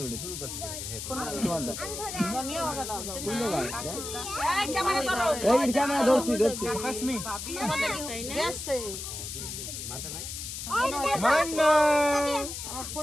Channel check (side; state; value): left; noise; hiss, 7 dB below the sound